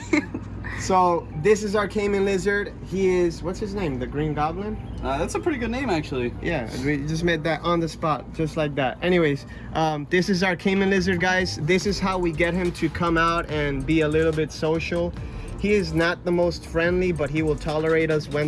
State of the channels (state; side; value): identical; both; correlation 1.00